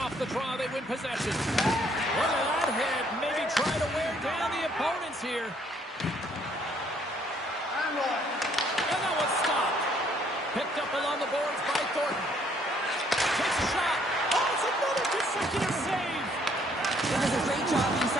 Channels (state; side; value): normal; both; correlation 0.65